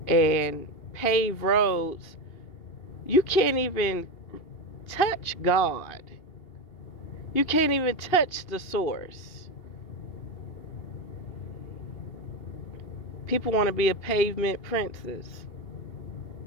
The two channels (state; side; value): late; right; 2.8 ms